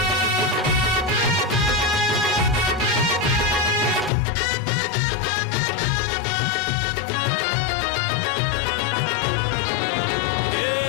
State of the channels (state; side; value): drops out; right; at 4.1 s